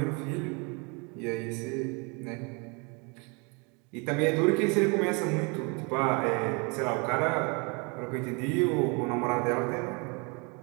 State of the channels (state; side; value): quieter; left; 31.5 dB